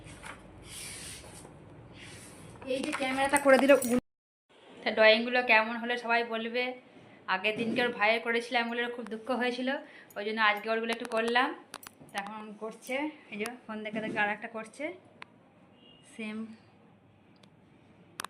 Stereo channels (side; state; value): both; identical; correlation 1.00